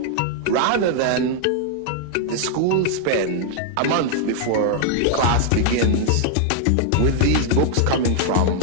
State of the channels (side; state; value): both; different; correlation 0.00